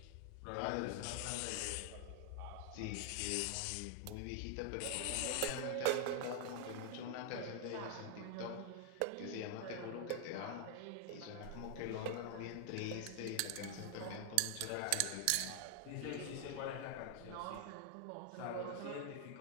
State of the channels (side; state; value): both; different; correlation 0.00